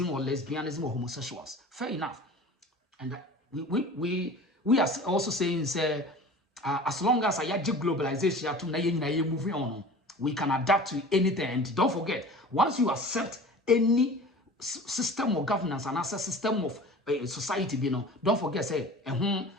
or lesbianism or homosexuals. Fair enough, and we are also saying say as long as I globalization to moving on, we can adapt to anything. And don't forget, once you accept any system of governance and as a system of society, don't forget, say,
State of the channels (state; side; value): normal; both; correlation 0.40